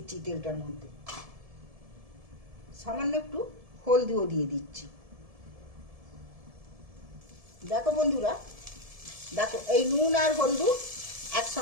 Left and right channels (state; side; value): late; left; 1.7 ms